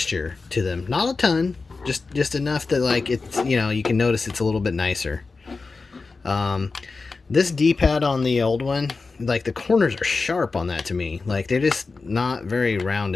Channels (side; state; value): right; quieter; 4.1 dB